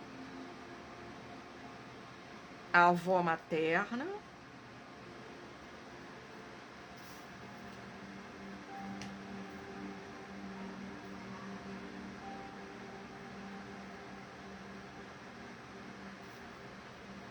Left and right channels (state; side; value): identical; both; correlation 1.00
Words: A avó materna.